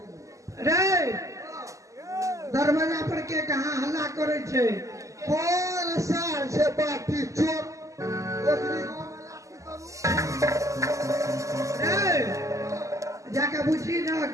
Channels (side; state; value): left; late; 0.16 ms